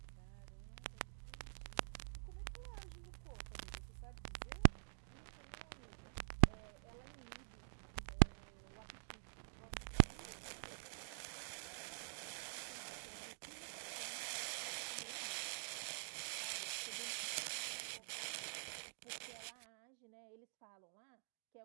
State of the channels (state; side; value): silent; left; digital silence